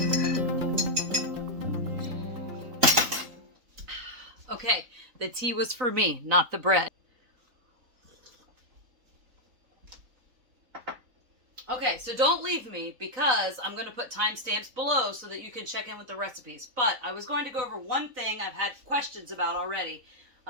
Okay, the tea was for me, not the bread. Okay, so don't leave me because I'm going to put timestamps below so that you can check in with the recipes. But I was going to go over one thing I've had questions about already,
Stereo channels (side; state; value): left; late; 4.0 ms